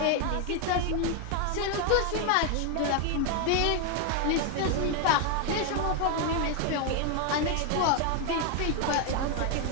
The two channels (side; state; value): both; different; correlation 0.01